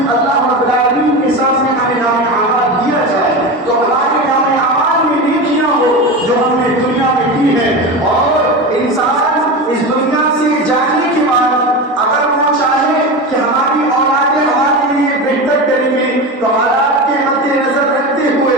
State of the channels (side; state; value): both; normal; correlation 0.23